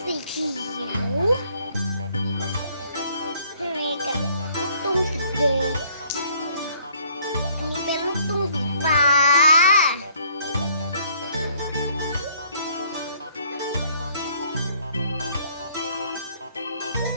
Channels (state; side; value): inverted; both; correlation -0.62